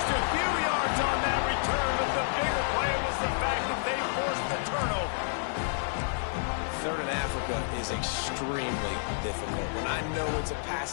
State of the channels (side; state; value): right; silent; 58 dB below the other